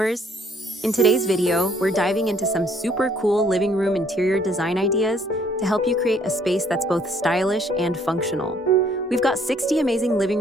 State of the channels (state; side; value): normal; both; correlation 0.63